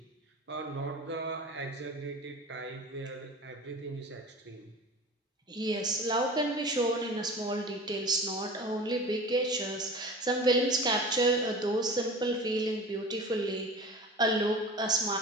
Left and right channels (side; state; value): both; normal; correlation 0.37